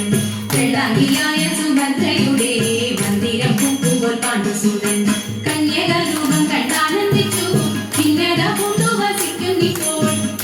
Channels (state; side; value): identical; both; correlation 1.00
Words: വെള്ളാഹിയായ സുഭദ്രയുടെ മന്ദിരം പൂക്കുപോൽ പാണ്ഡുസുതൻ കന്യകരൂപം കണ്ടാനന്ദിച്ചു ഭിന്നത പൂണ്ടു വസിക്കുന്നിപ്പോൾ